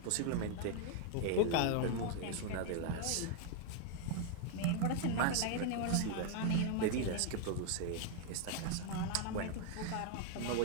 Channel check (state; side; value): different; both; correlation 0.00